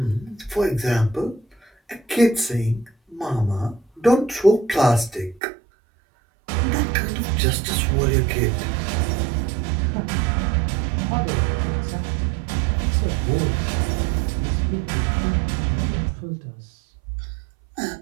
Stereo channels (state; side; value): drops out; left; at 5.4 s